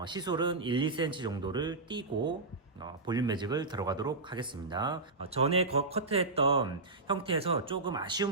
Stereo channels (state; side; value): quieter; left; 3.4 dB